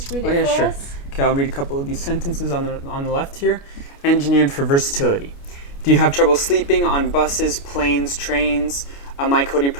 read it for us? Okay, I'll read a couple of these sentences on the left here. Engineered for versatility. Do you have trouble sleeping on buses, planes, trains? MyKoddi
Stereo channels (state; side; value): late; right; 29 ms